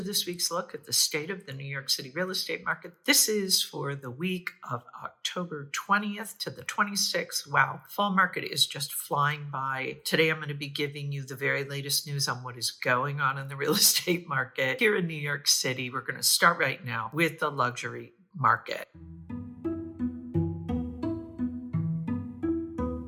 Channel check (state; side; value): identical; both; correlation 1.00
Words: week's look at the state of the New York City real estate market. This is for the week of October 20th to the 26th. Wow, fall market is just flying by. Today I'm going to be giving you the very latest news on what is going on in the real estate market here in New York City. We're going to start right now with the luxury market.